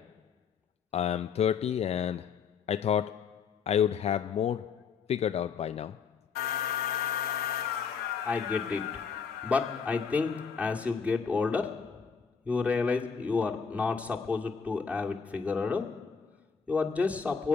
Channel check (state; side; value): quieter; right; 6.1 dB